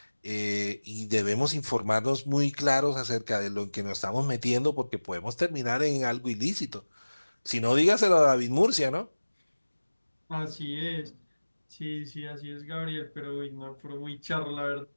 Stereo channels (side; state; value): both; inverted; correlation -1.00